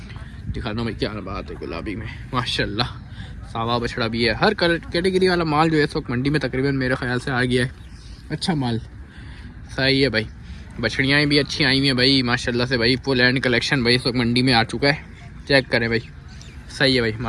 दिखा दो भाई, क्या बात है। गुलाबी में माशाल्लाह, सावा बछड़ा भी है। हर कैटेगरी वाला माल जो है इस वक्त मंडी में तकरीबन मेरे ख्याल से आ गया है। अच्छा माल। सही है भाई, बछड़ियाँ भी अच्छी आई हुई हैं भाई माशाल्लाह से भाई। फुल एंड कलेक्शन भाई इस वक्त मंडी में आ चुका है। चेक करें भाई। सही है भाई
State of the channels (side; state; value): both; identical; correlation 1.00